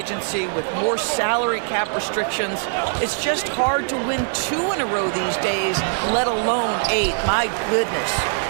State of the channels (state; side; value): silent; left; digital silence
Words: with more salary cap restrictions, it's just hard to win 2 in a row these days, let alone 8. My goodness.